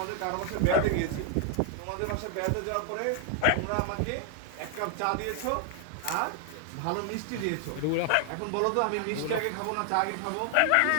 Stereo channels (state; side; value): different; both; correlation 0.00